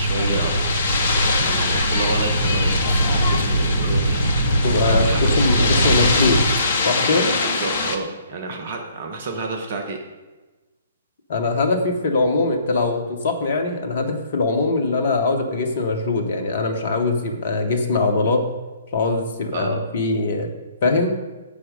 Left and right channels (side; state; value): both; inverted; correlation -0.62